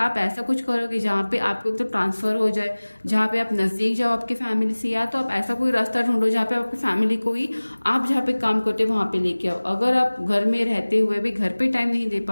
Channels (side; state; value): both; inverted; correlation -1.00